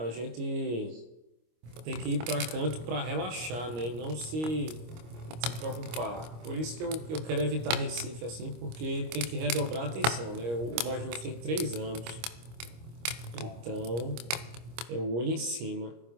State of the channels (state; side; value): late; left; 25 ms